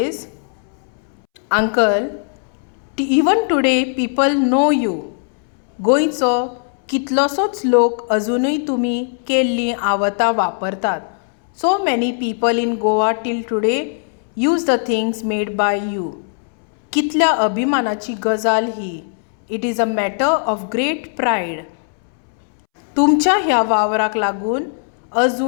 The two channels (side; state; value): right; silent; 67 dB below the other